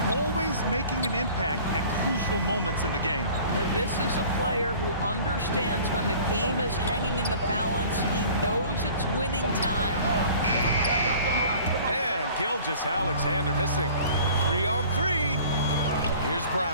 Always making an impact at crucial moments in the game. This is a player who understands when the game is hanging in the balance. He knows it's winning time. And Gilgeous-Alexander missing. 3-on-3. Here's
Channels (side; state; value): both; inverted; correlation -0.47